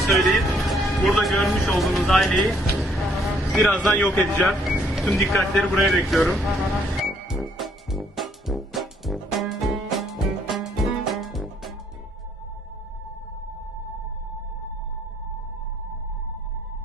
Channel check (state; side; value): normal; both; correlation 0.67